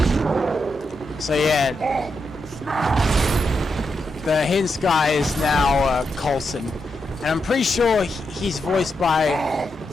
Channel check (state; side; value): normal; both; correlation 0.84